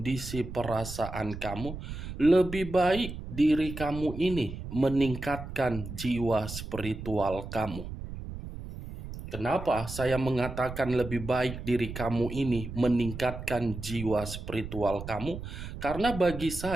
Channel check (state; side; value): noise; right; rumble, 9 dB below the sound